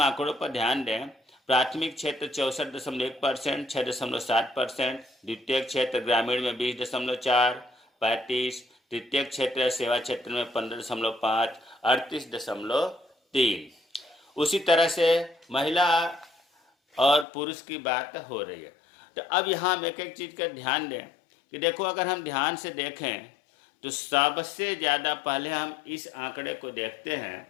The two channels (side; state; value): right; drops out; at 17.2 s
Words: आंकड़ों पर ध्यान दें। प्राथमिक क्षेत्र 64.1%, 6.7%। द्वितीय क्षेत्र ग्रामीण में 20.4, 35। तृतीय क्षेत्र सेवा क्षेत्र में 15.5, 38.3। उसी तरह से महिला और पुरुष की बात हो रही है। तो अब यहाँ हम एक एक चीज़ का ध्यान दें कि देखो अगर हम ध्यान से देखें तो सबसे ज़्यादा पहले हम इस आंकड़े को देखते हैं